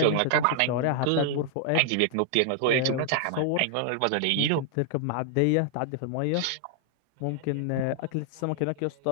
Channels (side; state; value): both; different; correlation -0.01